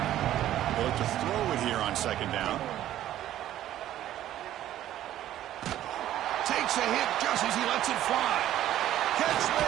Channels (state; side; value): quieter; left; 12.6 dB